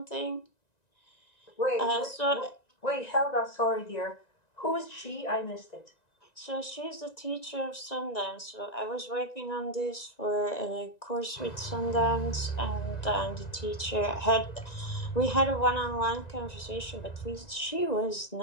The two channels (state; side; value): late; right; 1.9 ms